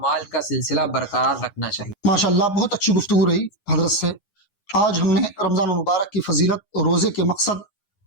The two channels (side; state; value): right; late; 9.7 ms